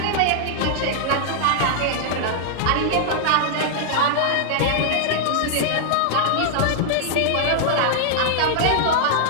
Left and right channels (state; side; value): different; both; correlation -0.01